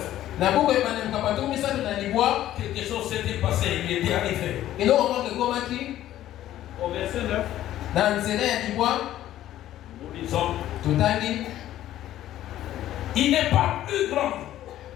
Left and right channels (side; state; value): right; quieter; 13.1 dB